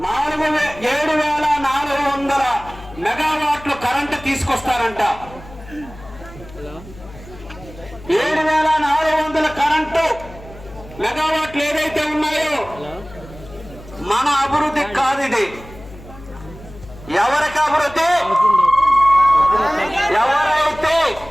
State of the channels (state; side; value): noise; left; hum, 18 dB below the sound